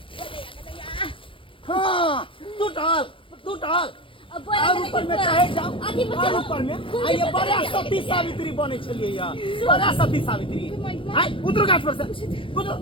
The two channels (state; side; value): late; right; 0.25 ms